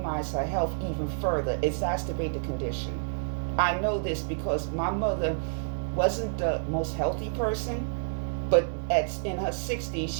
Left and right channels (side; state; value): left; silent; digital silence